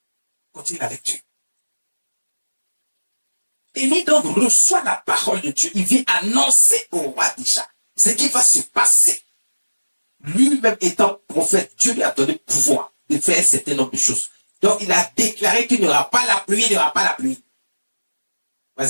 Continue avec Dieu. Élie donc reçoit la parole de Dieu. Il vient annoncer au roi déjà ce qui va se passer. Lui-même étant prophète, Dieu lui a donné le pouvoir de faire un certain nombre de choses. Donc il a déclaré qu'il n'y aura pas la pluie, il n'y aura pas la pluie.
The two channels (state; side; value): inverted; both; correlation -1.00